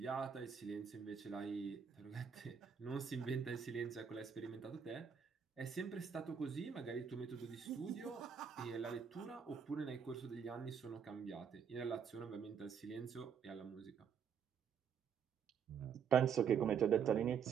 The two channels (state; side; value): quieter; left; 7.1 dB